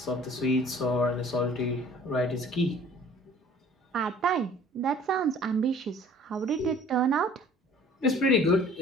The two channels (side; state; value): both; normal; correlation 0.51